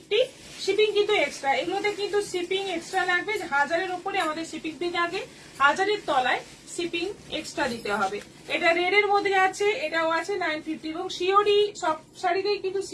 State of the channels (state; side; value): identical; both; correlation 1.00